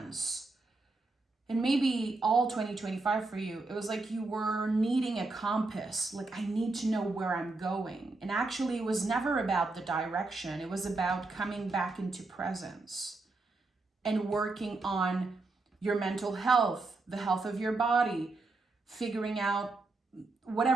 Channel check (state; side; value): quieter; left; 3.4 dB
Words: and maybe all 2025 for you, it was like you were needing a compass. Like, I need to know where I'm going. And actually, it was never about the direction. It was about coming back into presence and working on your mental health, the health of your body, figuring out